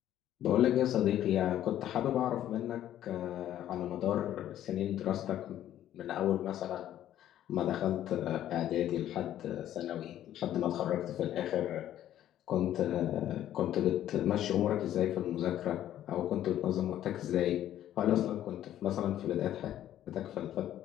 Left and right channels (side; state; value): right; quieter; 12.0 dB